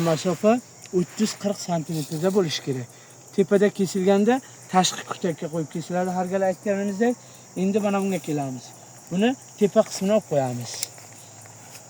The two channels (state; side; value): identical; both; correlation 1.00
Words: masofa 30-40 santimetrda bo'lishi kerak. Tepada kesilganda tashqi kutakka qo'yib kesiladi. Har gal aytganimizdek, endi mana bunga kelamiz. Buni tepa qismini olib qo'yamiz.